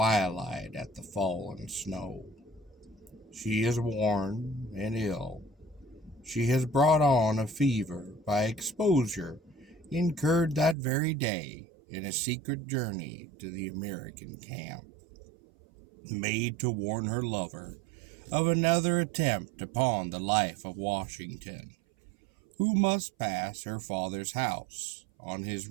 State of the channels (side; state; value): left; drops out; at 10.8 s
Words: at the fallen snow. She is worn and ill. She has brought on a fever by exposure incurred that very day in a secret journey to the American camp, made to warn her lover of another attempt upon the life of Washington, who must pass her father's house on his